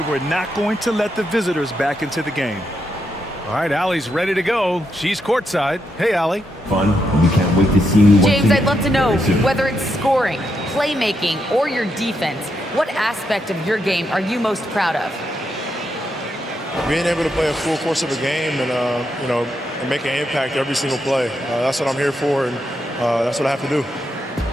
were not going to let the visitors back into the game. All right, Allie's ready to go. She's courtside. Hey, Allie. Fun. We can't wait to see you. James, I'd love to know, whether it's scoring, playmaking, or your defense, what aspect of your game are you most proud of? Being able to play a full course of a game and, and make an impact every single play. That's what I'm here for, and that's what I have to do.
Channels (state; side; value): normal; both; correlation 0.82